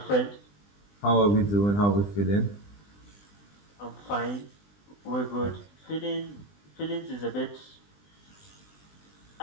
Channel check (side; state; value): right; late; 20 ms